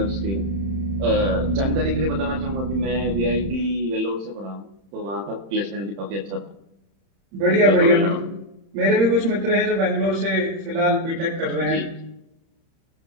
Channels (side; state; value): left; late; 31 ms